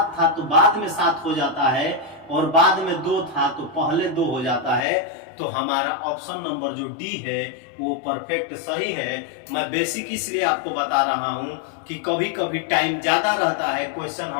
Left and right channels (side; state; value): right; drops out; at 4.9 s